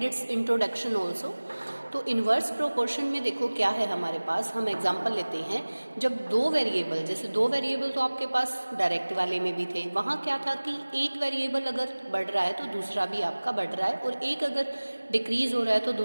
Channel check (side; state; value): both; inverted; correlation -1.00